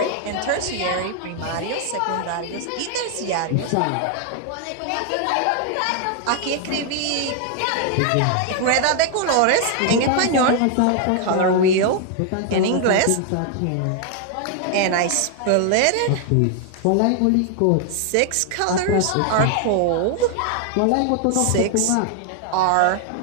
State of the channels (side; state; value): both; different; correlation 0.00